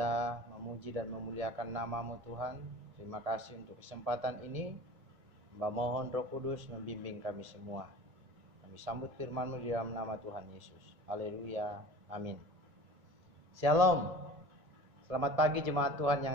memuji dan memuliakan namamu Tuhan. Terima kasih untuk kesempatan ini. Hamba mohon Roh Kudus membimbing kami semua. Kami sambut firman-Mu di dalam nama Tuhan Yesus. Haleluya. Amin. Shalom. Selamat pagi jemaat Tuhan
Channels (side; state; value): left; late; 1.8 ms